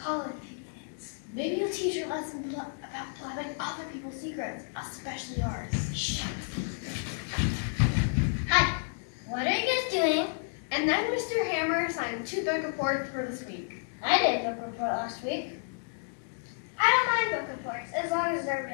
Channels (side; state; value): right; silent; digital silence